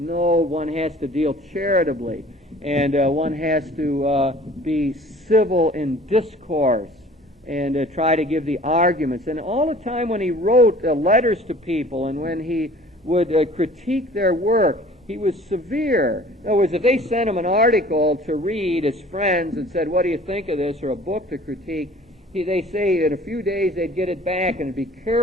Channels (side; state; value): both; normal; correlation 0.49